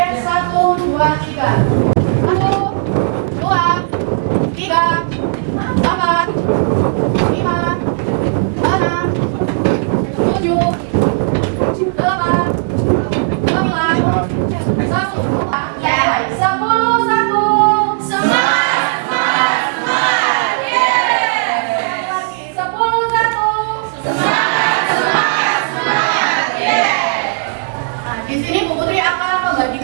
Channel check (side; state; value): left; silent; digital silence